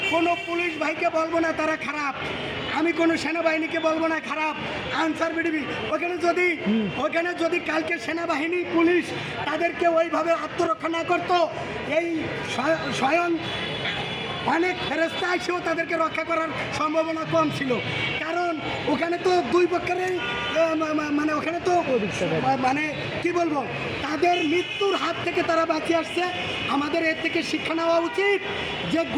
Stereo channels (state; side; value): identical; both; correlation 1.00